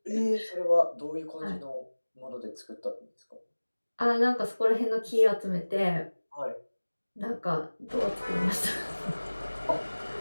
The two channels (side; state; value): both; inverted; correlation -1.00